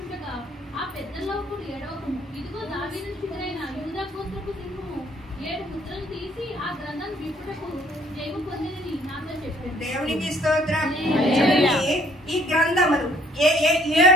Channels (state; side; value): normal; both; correlation 0.61